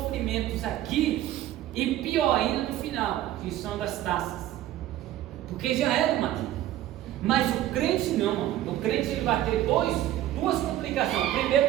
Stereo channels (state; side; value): quieter; left; 13.3 dB